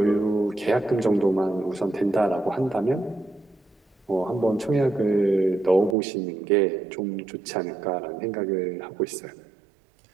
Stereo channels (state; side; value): drops out; left; at 6.0 s